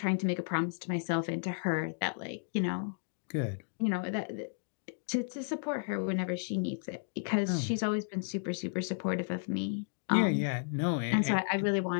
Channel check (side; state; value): right; silent; digital silence